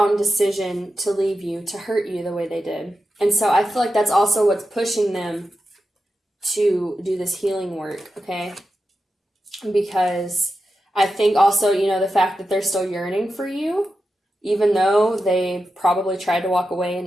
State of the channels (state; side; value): normal; both; correlation 0.90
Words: decision to leave you, to hurt you the way they did. And so I feel like that's also what's pushing them to do this healing work, okay? Because I think also, the fact that they're still yearning for you, even though they probably tried to walk away